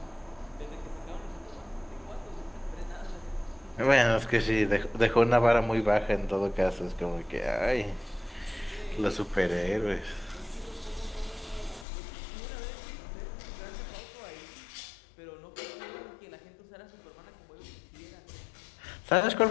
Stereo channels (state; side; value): drops out; right; at 11.9 s